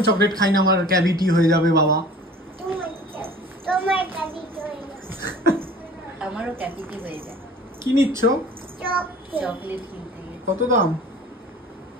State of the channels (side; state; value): both; normal; correlation 0.45